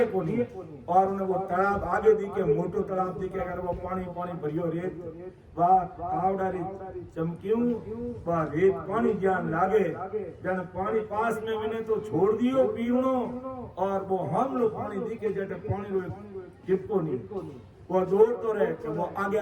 को नहीं, और उन्हें वो तालाब आगे दिखे मोटो तालाब दिखे, अगर वो पानी पानी भरियो रेत वाह कावड़ारी चमक्यूं वाह रेत पानी ज्ञान लागे, जन पानी पास में मिले तो छोड़ दियो पीवनो, और वो हम लोग पानी दिखे जटे पानी चिपको नहीं, वो दौड़ तो रहे कि वो आगे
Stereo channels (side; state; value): both; identical; correlation 1.00